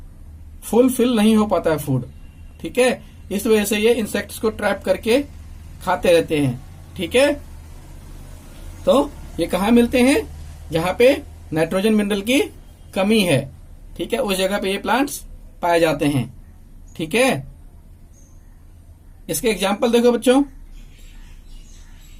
फुलफिल नहीं हो पाता है फूड, ठीक है। इस वजह से ये इंसेक्ट्स को ट्रैप करके खाते रहते हैं, ठीक है। तो ये कहाँ मिलते हैं, जहां पे नाइट्रोजन मिनरल की कमी है, ठीक है, उस जगह पे ये प्लांट्स पाए जाते हैं, ठीक है। इसके एग्जाम्पल देखो बच्चों,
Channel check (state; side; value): identical; both; correlation 1.00